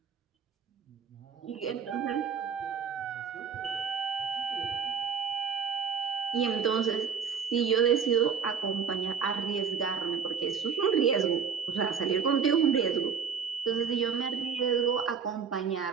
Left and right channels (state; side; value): quieter; left; 6.6 dB